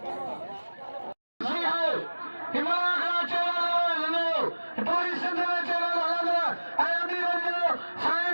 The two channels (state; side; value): inverted; both; correlation -1.00